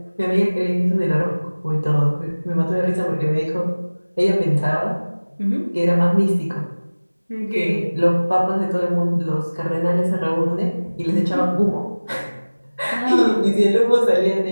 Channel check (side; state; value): both; inverted; correlation -1.00